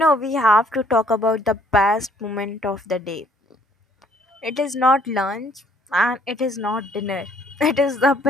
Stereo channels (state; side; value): normal; both; correlation 0.62